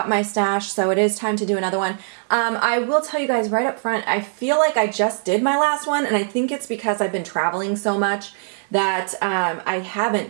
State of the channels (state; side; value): silent; left; 65 dB below the other